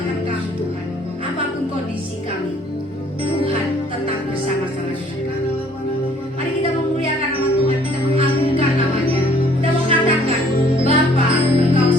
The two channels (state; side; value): normal; both; correlation 0.59